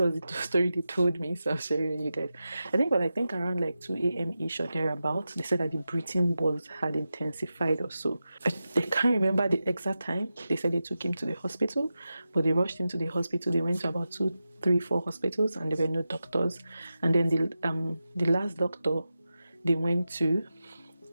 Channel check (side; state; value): both; inverted; correlation -0.92